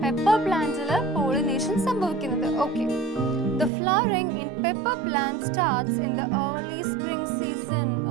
പെപ്പർ പ്ലാന്റില് പോളിനേഷൻ സംഭവിക്കുന്നത്. Okay, the flowering in pepper plant starts in the early spring season.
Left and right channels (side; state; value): left; drops out; at 3.7 s